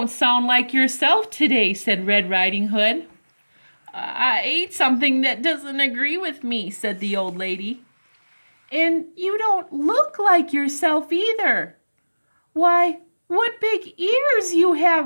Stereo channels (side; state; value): both; inverted; correlation -1.00